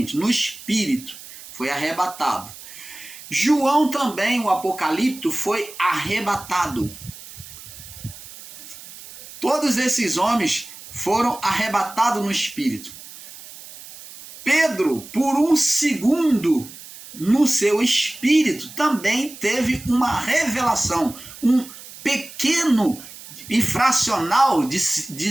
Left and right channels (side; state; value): right; noise; hiss, 16 dB below the sound